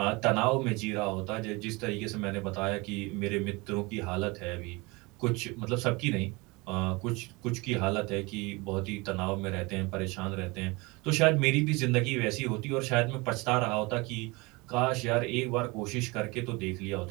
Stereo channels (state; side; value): quieter; left; 25.3 dB